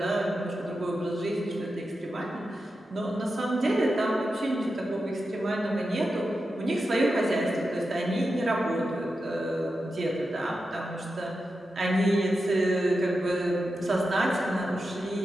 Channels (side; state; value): both; normal; correlation 0.90